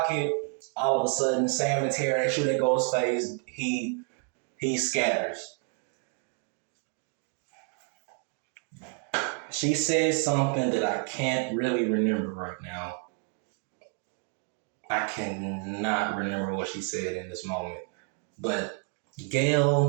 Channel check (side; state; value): left; quieter; 39.7 dB